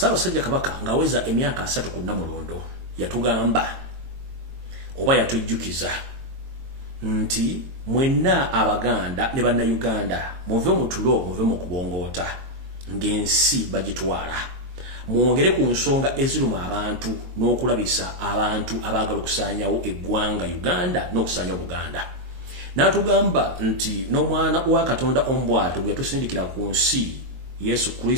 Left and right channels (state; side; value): late; left; 22 ms